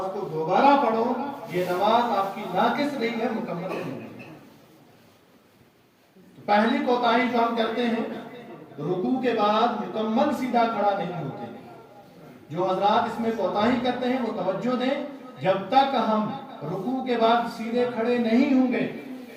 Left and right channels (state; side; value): identical; both; correlation 1.00